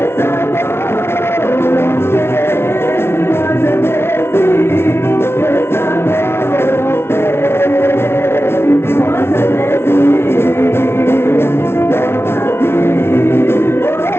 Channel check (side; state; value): right; late; 0.12 ms